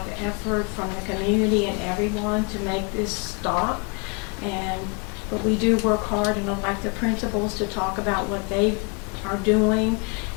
of effort from the community and everyone to make this stop. But we do work hard, and I'd like the principals to talk about what they are doing.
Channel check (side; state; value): right; quieter; 32.5 dB